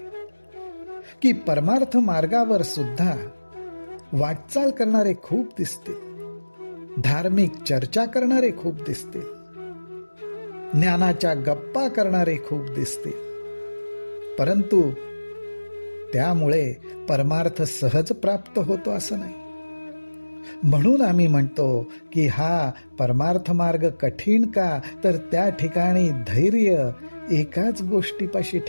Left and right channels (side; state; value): both; inverted; correlation -1.00